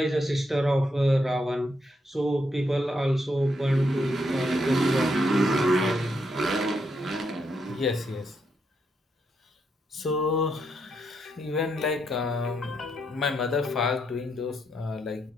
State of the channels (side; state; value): both; normal; correlation 0.79